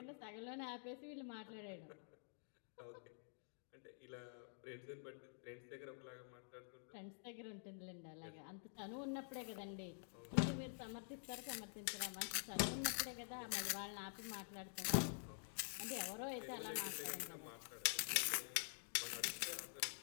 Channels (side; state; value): right; silent; digital silence